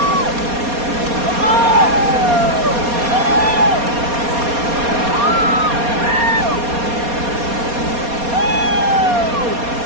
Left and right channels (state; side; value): late; left; 4.2 ms